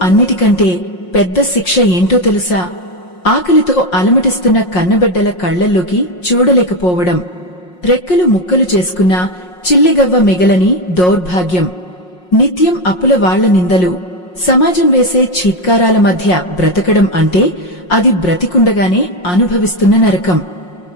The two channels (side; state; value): right; late; 5.6 ms